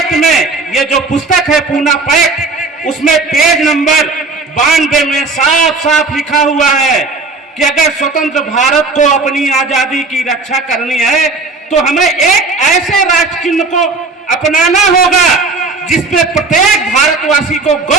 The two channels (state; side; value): quieter; left; 3.8 dB